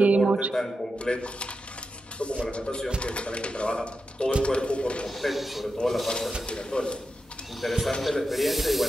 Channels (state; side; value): normal; both; correlation 0.89